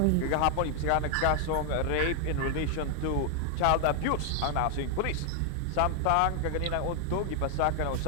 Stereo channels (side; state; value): both; different; correlation 0.00